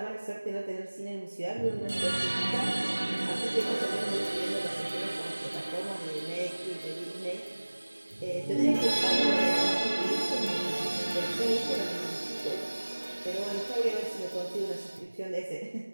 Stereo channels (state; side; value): inverted; both; correlation -1.00